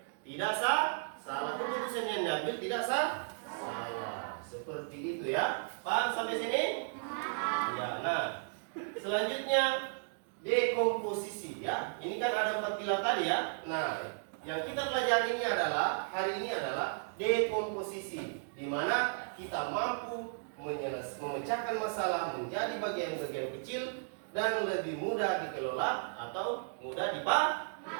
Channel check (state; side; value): silent; left; digital silence